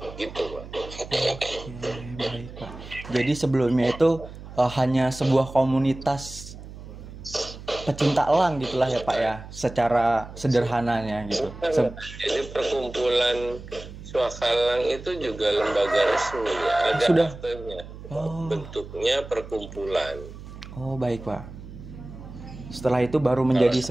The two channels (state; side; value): noise; right; hum, 14 dB below the sound